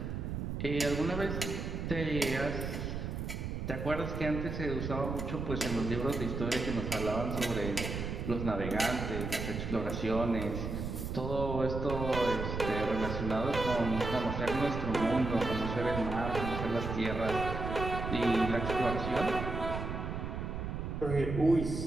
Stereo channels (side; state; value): right; noise; rumble, 4 dB below the sound